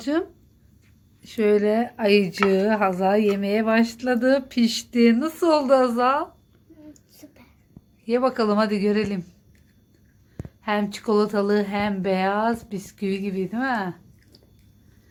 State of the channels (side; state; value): both; identical; correlation 1.00